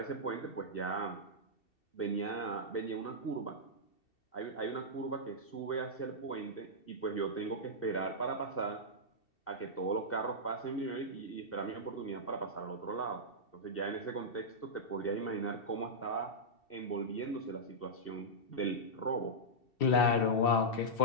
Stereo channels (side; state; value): right; late; 2.7 ms